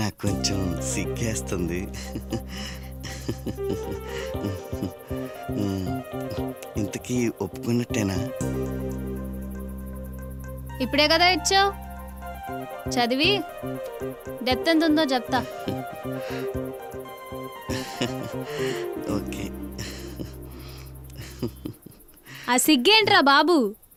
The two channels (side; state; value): both; identical; correlation 1.00